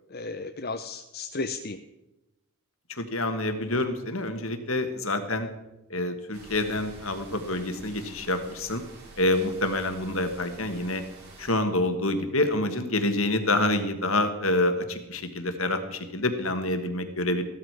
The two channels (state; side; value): normal; both; correlation 0.07